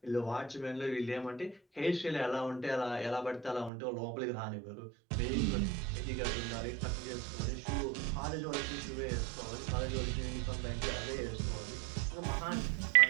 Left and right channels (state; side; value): drops out; left; at 3.7 s